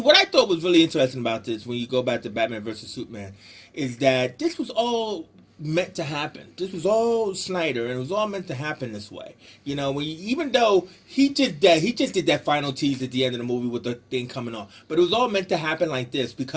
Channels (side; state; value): both; identical; correlation 1.00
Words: I thought was really interesting about this when you go back to Batman versus Superman is that this was all meant to happen. This was all Snyder, and it was all meant to happen this way. You know, even though he did that final tease at the end of the movie with the thing coming off, but it was all meant to happen like this